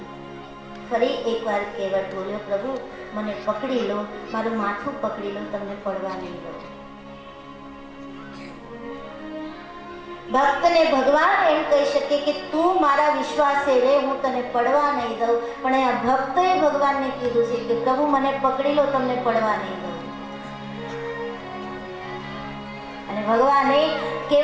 ફરી એકવાર કેવટ બોલ્યો, પ્રભુ મને પકડી લો, મારું માથું પકડી લો, તમને પડવા નહીં દો. ભક્તને ભગવાન એમ કહી શકે કે તું મારા વિશ્વાસે રહે, હું તને પડવા નહીં દઉં. પણ આ ભક્તએ ભગવાનને કીધું છે કે પ્રભુ મને પકડી લો, તમને પડવા નહીં દઉં. અને ભગવાને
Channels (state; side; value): identical; both; correlation 1.00